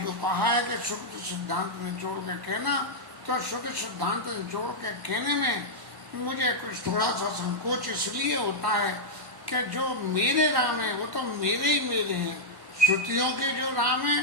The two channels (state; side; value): late; left; 1.1 ms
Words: कहा है कि शुद्ध सिद्धांत निचोड़ के कहना, तो शुद्ध सिद्धांत निचोड़ के कहने में मुझे कुछ थोड़ा सा संकोच इसलिए होता है कि जो मेरे राम है वो तो मेरे ही मेरे हैं, श्रुतियों के जो राम है